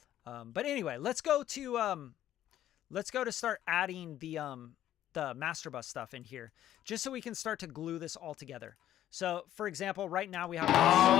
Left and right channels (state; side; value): quieter; right; 12.1 dB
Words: But anyway, let's go to start adding the master bus stuff in here, just so we can start to glue this all together. So, for example, right now we have